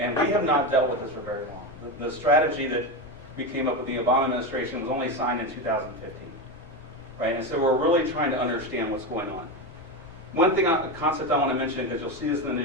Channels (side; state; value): left; noise; rumble, 20 dB below the sound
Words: we have not dealt with this for very long. The strategy that we came up with the Obama administration was only signed in 2015. Right? And so we're really trying to understand what's going on. One thing, a concept I want to mention, because you'll see this in the